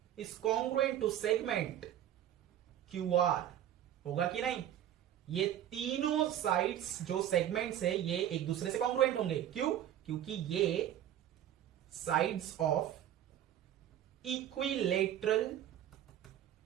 is congruent to segment QR, होगा कि नहीं। ये तीनों साइड्स जो सेगमेंट्स है ये एक दूसरे से कॉन्ग्रुएंट होंगे। क्यों, क्योंकि ये साइड्स ऑफ इक्विलेटरल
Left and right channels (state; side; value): quieter; left; 11.3 dB